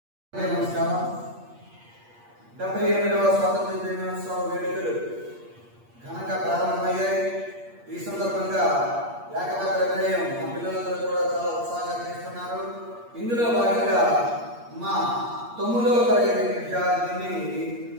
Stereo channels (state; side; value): late; left; 8.5 ms